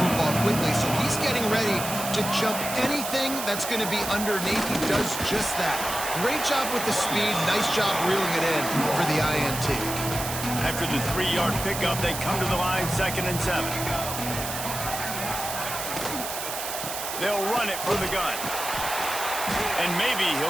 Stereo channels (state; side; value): noise; right; hiss, 6 dB below the sound